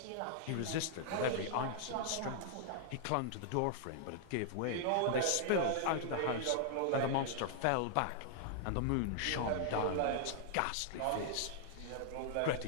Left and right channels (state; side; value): different; both; correlation -0.01